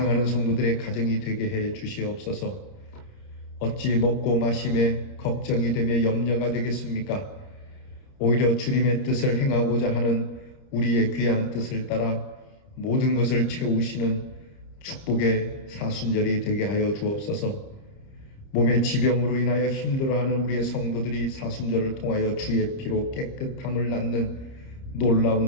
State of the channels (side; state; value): right; late; 30 ms